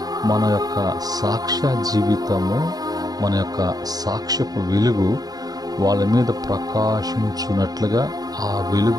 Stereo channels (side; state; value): left; late; 0.19 ms